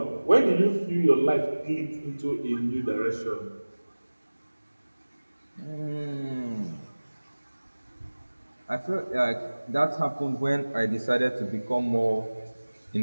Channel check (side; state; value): both; inverted; correlation -1.00